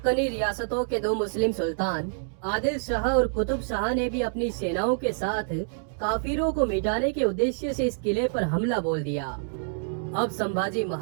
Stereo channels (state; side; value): silent; left; digital silence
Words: रियासतों के 2 मुस्लिम सुल्तान आदिल शाह और कुतुब शाह ने भी अपनी सेनाओं के साथ काफिरों को मिटाने के उद्देश्य से इस किले पर हमला बोल दिया। अब संभाजी